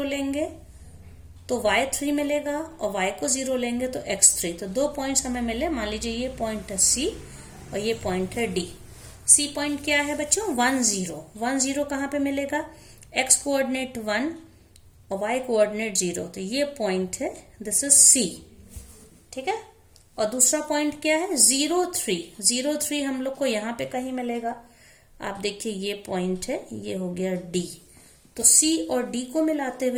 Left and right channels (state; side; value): identical; both; correlation 1.00